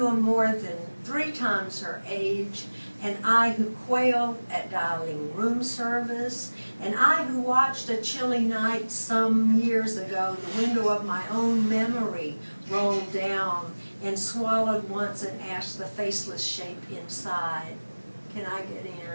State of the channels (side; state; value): both; inverted; correlation -1.00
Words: am more than 3 times her age, and I who quailed at dialing room service, and I who watched a chilly night some years ago, the window of my own memory rolled down and swallowed once and asked the faceless shape inside, "Can I get in?"